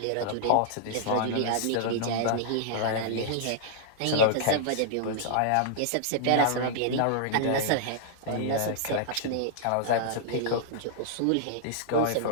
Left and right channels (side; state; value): both; different; correlation -0.01